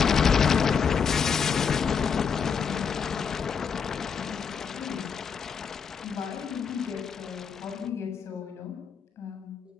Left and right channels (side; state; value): right; quieter; 6.4 dB